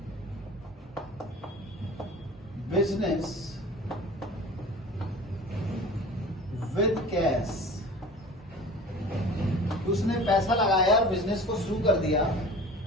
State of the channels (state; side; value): normal; both; correlation 0.40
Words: बिजनेस विद कैश। उसने पैसा लगाया और बिजनेस को शुरू कर दिया।